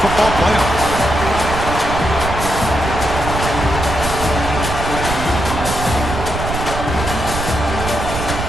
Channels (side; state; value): right; noise; rumble, 5 dB below the sound